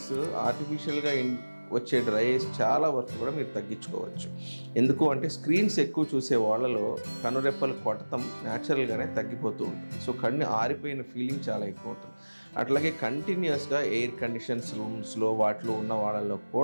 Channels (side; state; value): both; inverted; correlation -1.00